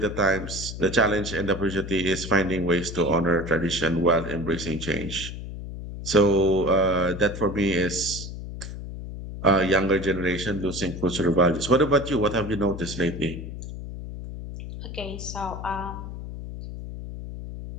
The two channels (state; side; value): noise; left; hum, 9 dB below the sound